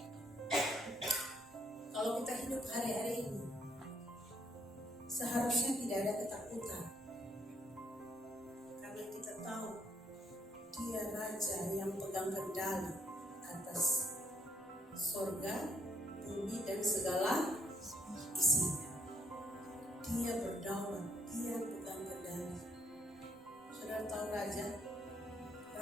Kalau kita hidup hari-hari ini, seharusnya tidak ada ketakutan. Karena kita tahu Dia Raja yang pegang kendali atas surga, bumi, dan segala isinya. Dia berdaulat, Dia pegang kendali. Saudara tahu Raja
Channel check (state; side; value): normal; both; correlation 0.70